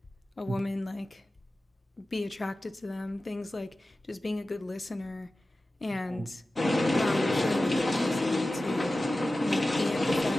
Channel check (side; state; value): both; normal; correlation 0.95